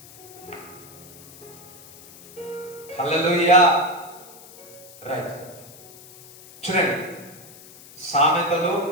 హల్లెలూయా. రైట్, చూడండి సామెతలు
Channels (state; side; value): noise; left; hiss, 20 dB below the sound